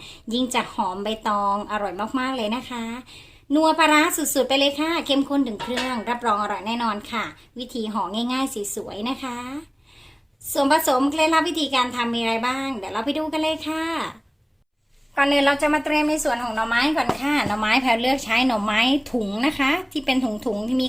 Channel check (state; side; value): identical; both; correlation 1.00